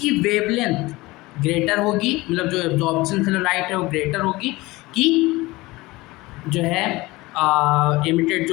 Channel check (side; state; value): right; quieter; 20.8 dB